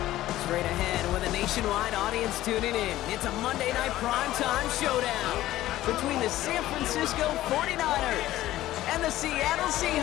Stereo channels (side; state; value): right; quieter; 14.9 dB